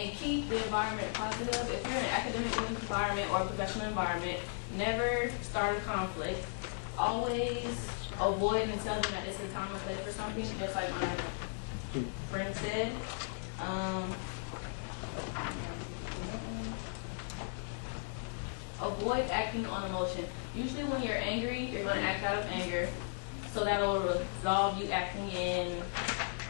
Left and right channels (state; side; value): silent; right; digital silence